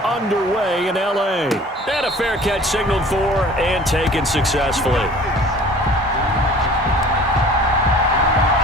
underway in LA. And a fair catch signaled for and taken successfully.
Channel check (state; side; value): normal; both; correlation 0.47